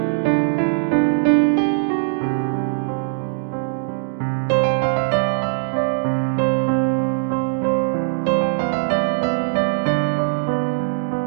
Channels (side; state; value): left; silent; digital silence